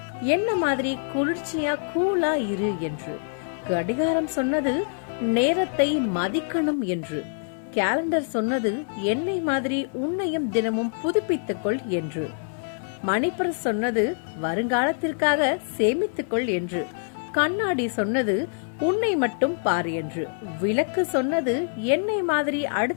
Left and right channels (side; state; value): right; silent; 56 dB below the other